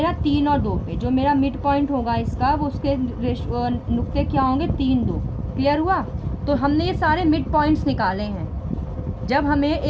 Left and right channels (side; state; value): both; identical; correlation 1.00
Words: 3 और 2 पे। जो मेरा मिड पॉइंट होगा इसका, वो उसके नुक्ते क्या होंगे? 3, 2। क्लियर हुआ? तो हमने ये सारे मिड पॉइंट्स निकाले हैं। जब हमें